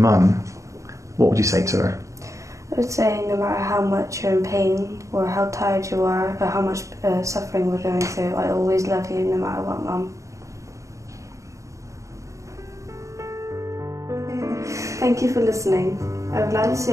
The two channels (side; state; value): left; late; 0.15 ms